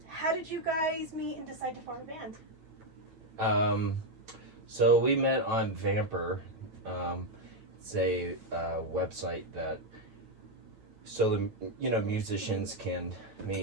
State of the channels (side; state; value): left; late; 9.4 ms